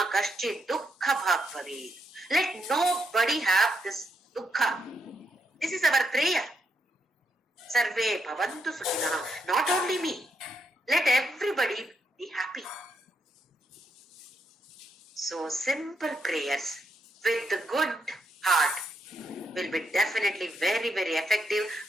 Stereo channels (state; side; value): normal; both; correlation 0.79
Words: kaschid dukkha bhag bhavet. Let nobody have this dukkha. This is our prayer. Sarve bhavantu sukhinaha. Not only me. Let everybody be happy. So simple prayers with the good heart will be definitely very, very effective,